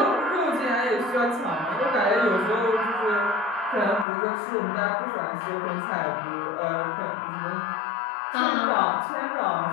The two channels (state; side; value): drops out; right; at 4.0 s